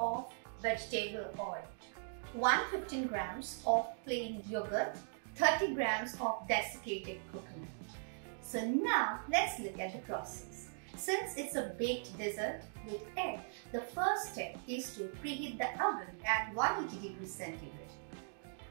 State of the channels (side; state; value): left; silent; digital silence